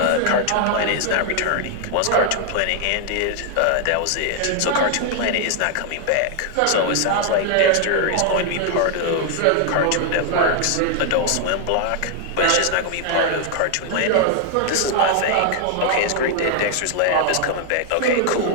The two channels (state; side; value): different; both; correlation 0.00